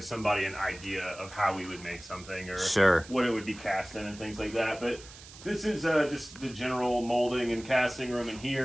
somebody an idea of how we would make something or what it would be cast in and things like that, but. This is just the general molding and casting room in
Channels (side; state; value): right; noise; hiss, 18 dB below the sound